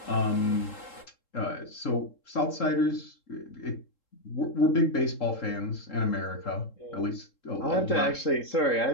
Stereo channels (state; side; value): late; right; 3.7 ms